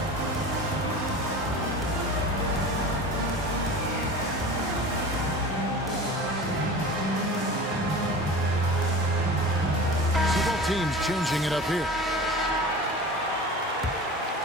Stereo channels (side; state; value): both; normal; correlation 0.35